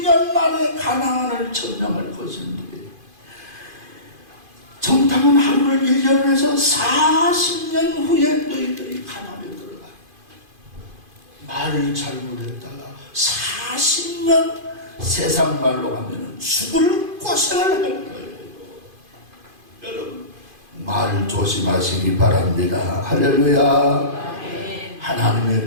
만에 가나안을 점령할 것인데 정탐은 하루를 1년을 해서 40년 후에 너희들이 가나안에 들어가. 말을 잘못했다가 40년 세상 말로 하면 죽을 고생을 할 거예요. 여러분 말 조심하시기 바랍니다. 할렐루야.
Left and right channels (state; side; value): late; left; 2.5 ms